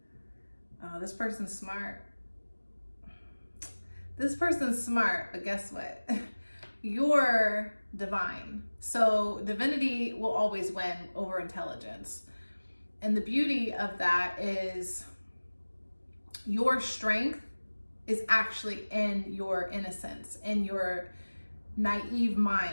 Oh, this person's smart. This person's smart, but guess what? You're divine. So divinity will always win over intelligence. And the beauty of that is your strength is actually in your innocence, in your naive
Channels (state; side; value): inverted; both; correlation -1.00